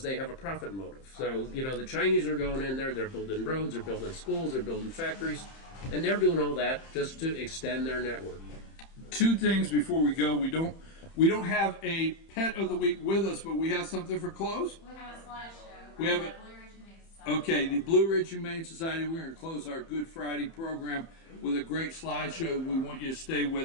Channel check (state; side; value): late; right; 30 ms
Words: they have a profit motive. So, the Chinese are going in there, they're building roads, they're building schools, they're building factories, and they're doing all that just to extend their network. Two things before we go. We don't have a pet of the week with us, but we have something for clothes. We have a slideshow. We have it. Okay, the Blue Ridge Humane Society, we're going to close our Good Friday program with a great slideshow. We want you to stay